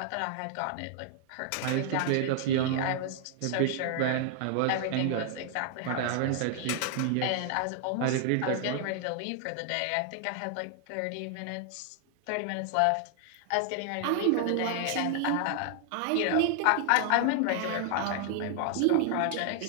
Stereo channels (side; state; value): both; different; correlation 0.00